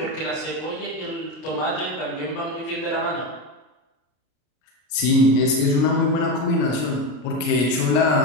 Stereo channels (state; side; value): late; right; 33 ms